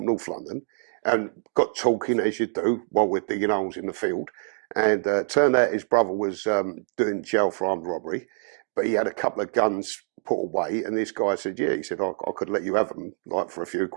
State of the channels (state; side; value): silent; left; digital silence